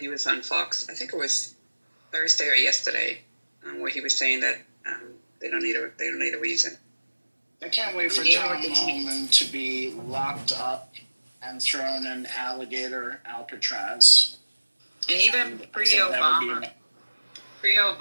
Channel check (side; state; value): both; inverted; correlation -1.00